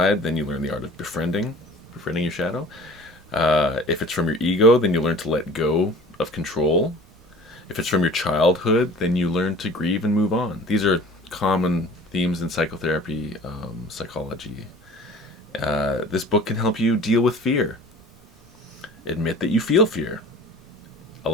then you learn the art of befriending your shadow. If it's from your ego, then you learn to let go of control. If it's from your childhood, then you learn to grieve and move on. These are common themes in psychotherapy, psychology. This book can help you deal with fear. Admit that you feel fear.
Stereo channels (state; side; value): normal; both; correlation 0.44